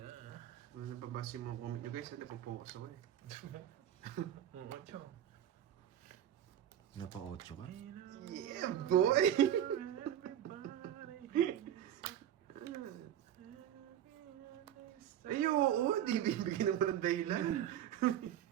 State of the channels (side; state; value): left; quieter; 10.8 dB